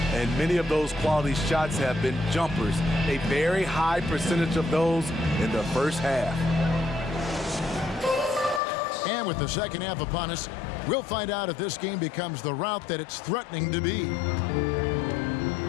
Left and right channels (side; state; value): right; drops out; at 8.6 s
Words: And many of those quality shots have been jumpers, a very high percentage of those in the first half. And with the second half upon us, we'll find out if this game becomes the route that it's threatening to be.